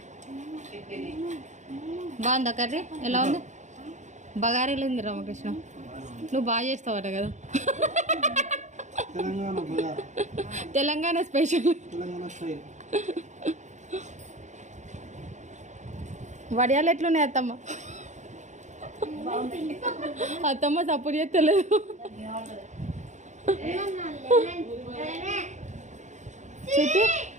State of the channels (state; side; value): late; left; 0.34 ms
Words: బాగుందా కర్రీ? ఎలా ఉంది? బగారీలు ఉంది రామకృష్ణ. నువ్వు బాగా చేస్తావట కదా. తెలంగాణ స్పెషల్. వడియాలు ఎట్లున్నాయి అత్తమ్మ? అత్తమ్మ సపోర్ట్ చేస్తలేదు. చిట్టి